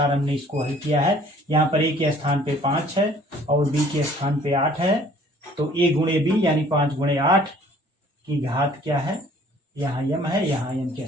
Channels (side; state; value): both; normal; correlation 0.55